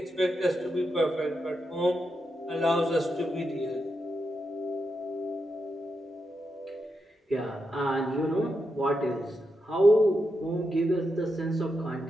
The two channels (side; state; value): both; normal; correlation 0.85